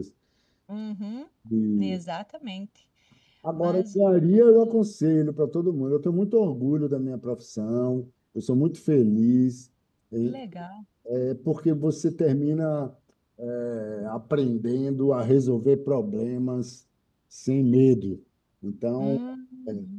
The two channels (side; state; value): both; identical; correlation 1.00